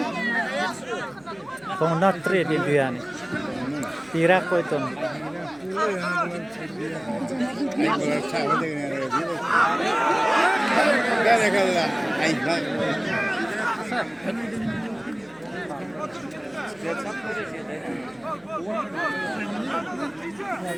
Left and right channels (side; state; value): right; noise; hum, 30 dB below the sound